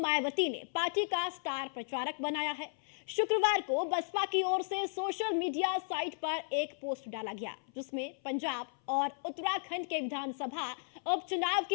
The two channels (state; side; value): silent; right; 55 dB below the other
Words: ने पार्टी का स्टार प्रचारक बनाया है। शुक्रवार को बसपा की ओर से सोशल मीडिया साइट पर एक पोस्ट डाला गया, जिसमें पंजाब और उत्तराखंड के विधानसभा उपचुनाव